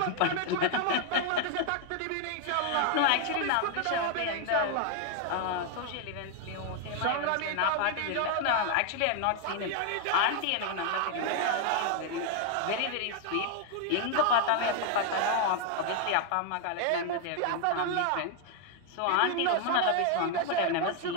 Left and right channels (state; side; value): different; both; correlation 0.00